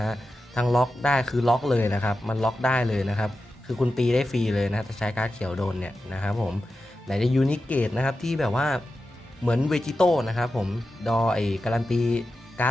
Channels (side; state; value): both; normal; correlation 0.91